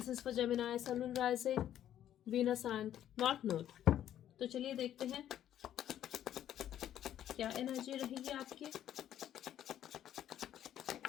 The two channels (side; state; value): right; quieter; 11.1 dB